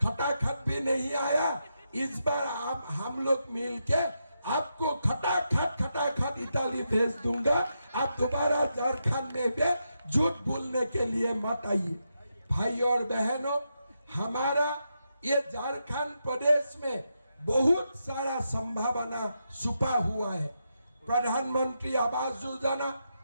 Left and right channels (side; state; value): both; inverted; correlation -0.84